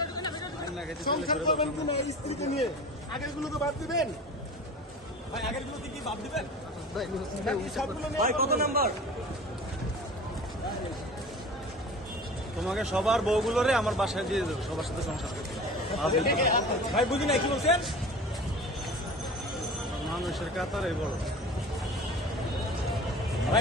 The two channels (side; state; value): both; normal; correlation 0.38